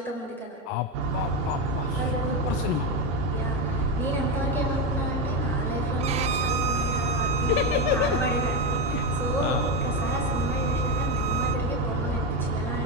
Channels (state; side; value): normal; both; correlation 0.11